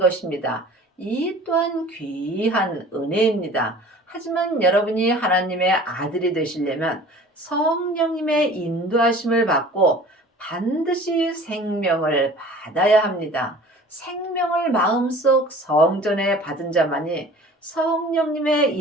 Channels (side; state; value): both; normal; correlation 0.45